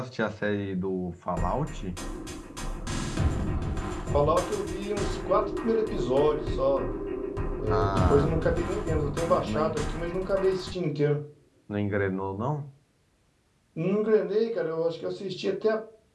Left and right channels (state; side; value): identical; both; correlation 1.00